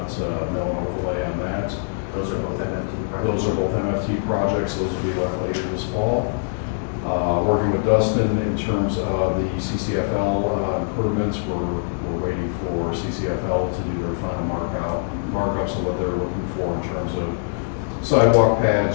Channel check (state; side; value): silent; right; digital silence